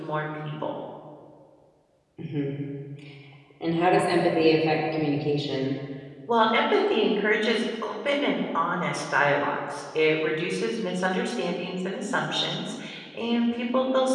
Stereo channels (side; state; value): both; identical; correlation 1.00